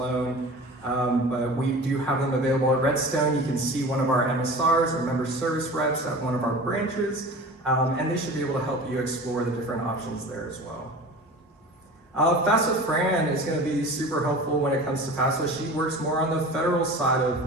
But we do have them available at Redstone. You can see one of our MSRs, or member service reps, at one of our branches, and they should be able to help you explore the different options there as well. FAFSA Fran is going to be super helpful when it comes to FAFSA. She works more on the federal side of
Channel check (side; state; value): both; normal; correlation 0.37